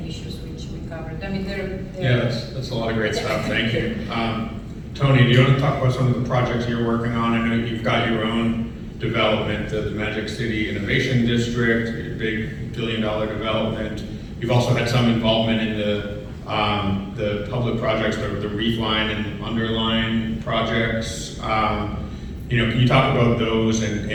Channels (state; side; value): identical; both; correlation 1.00